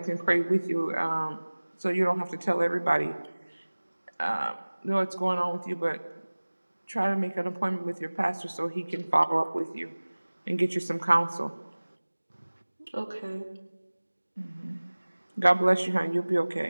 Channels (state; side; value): inverted; both; correlation -1.00